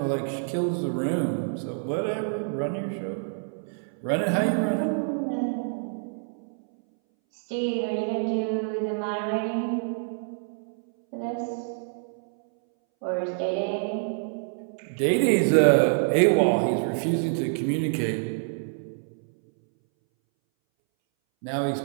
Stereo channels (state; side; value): silent; left; 60 dB below the other